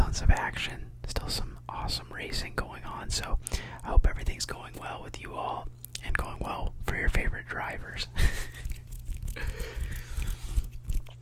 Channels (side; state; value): both; identical; correlation 1.00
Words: of action, still some awesome racing going on. So I hope everything's going well with you all and going well for your favorite drivers.